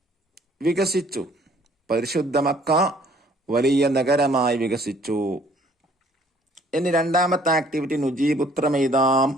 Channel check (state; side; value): normal; both; correlation 0.59